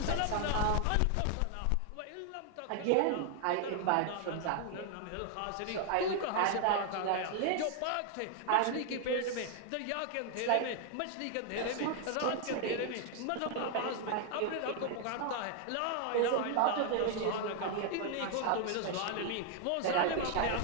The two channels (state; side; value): different; both; correlation 0.00